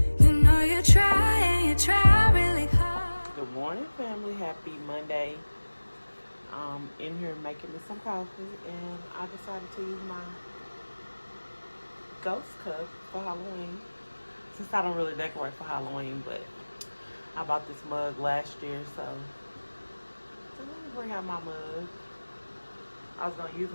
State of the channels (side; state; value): both; inverted; correlation -1.00